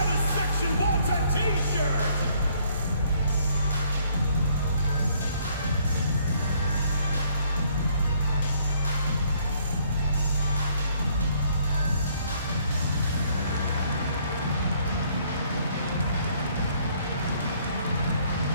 section wants a T-shirt?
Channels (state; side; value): inverted; both; correlation -0.65